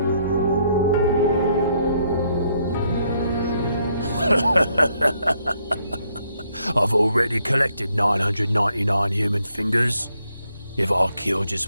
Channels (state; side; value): inverted; both; correlation -0.72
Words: I've already collected 999 human fingers. If I kill